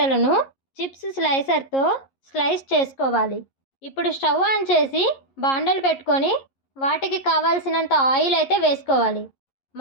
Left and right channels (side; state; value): right; late; 11 ms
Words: చిప్స్ స్లైసర్తో స్లైస్ చేసుకోవాలి. ఇప్పుడు స్టవ్ ఆన్ చేసి బాండలు పెట్టుకొని వాటికి కావాల్సినంత ఆయిల్ అయితే వేసుకోవాలి.